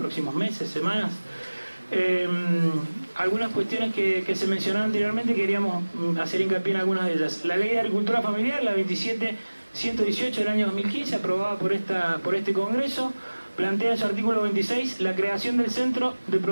meses, semanas, algunas cuestiones que se mencionaron anteriormente, queríamos hacer hincapié en algunas de ellas. La Ley de Agricultura Familiar, la 27118 del año 2015, aprobada por este Congreso, plantea en su artículo 26 la creación del Centro de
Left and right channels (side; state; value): both; inverted; correlation -1.00